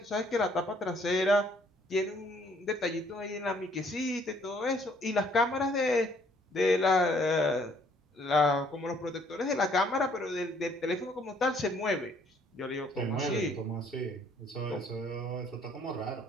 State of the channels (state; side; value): normal; both; correlation 0.63